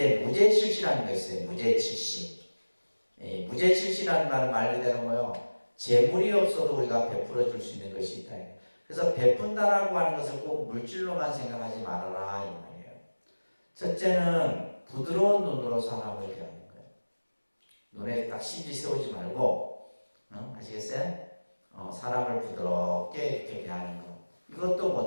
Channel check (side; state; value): both; inverted; correlation -1.00